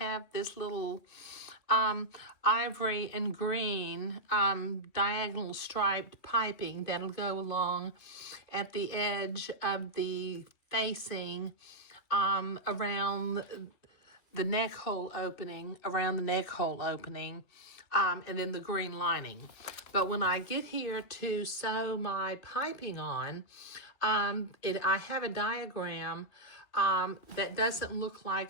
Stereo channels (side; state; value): right; late; 2.6 ms